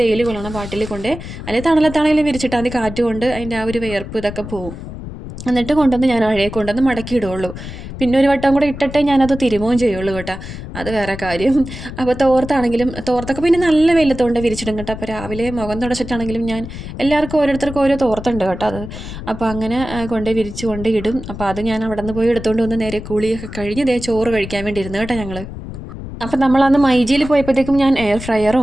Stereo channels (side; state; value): left; noise; rumble, 10 dB below the sound